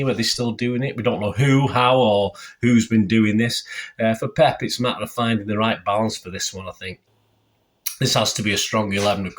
Are they still doing it? We don't know who, how, or who's been doing this. For Pep, it's a matter of finding the right balance for this one, I think. This has to be a strong 11, of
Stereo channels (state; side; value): identical; both; correlation 1.00